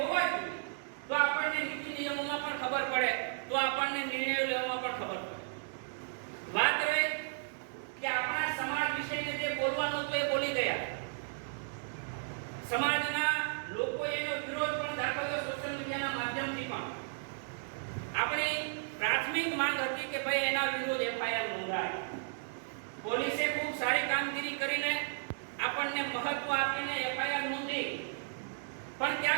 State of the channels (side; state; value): left; silent; digital silence